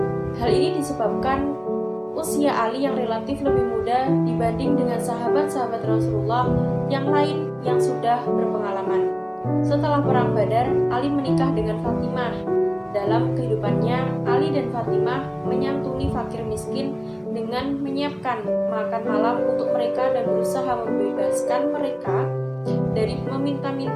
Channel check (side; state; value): both; identical; correlation 1.00